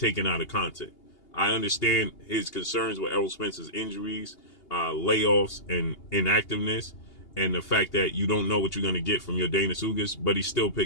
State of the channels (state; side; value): late; right; 2.8 ms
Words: out of context. I understand his concerns with Errol Spence's injuries, layoffs, and inactiveness, and the fact that you don't know what you're going to get from Yordenis Ugas, but he still